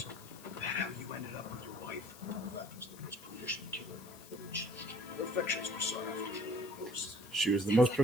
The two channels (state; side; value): noise; left; hiss, 18 dB below the sound